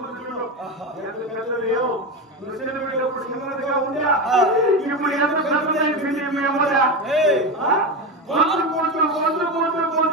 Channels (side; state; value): both; normal; correlation 0.17